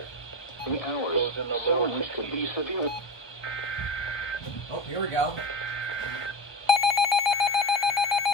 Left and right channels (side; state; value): right; late; 1.2 ms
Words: The hours in the lower could be severe. Oh, here we go.